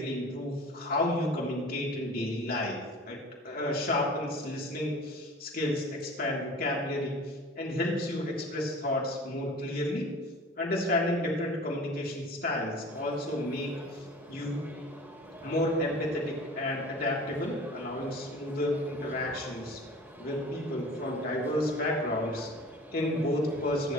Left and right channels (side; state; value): both; normal; correlation 0.42